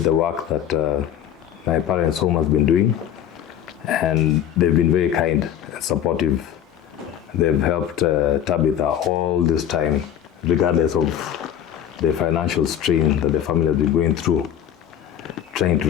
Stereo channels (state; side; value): quieter; right; 10.0 dB